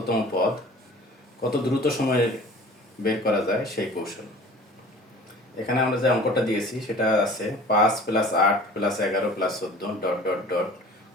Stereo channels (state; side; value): normal; both; correlation 0.45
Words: পদ কত দ্রুত সময়ে বের করা যায় সেই কৌশল। এখানে আমরা যে অঙ্কটা দিয়েছি সেটা আছে 5 + 8 + 11 + 14 ডট ডট ডট